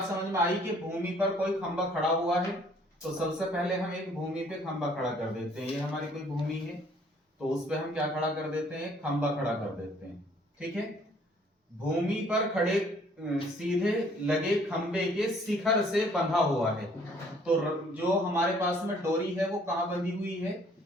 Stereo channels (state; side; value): normal; both; correlation 0.60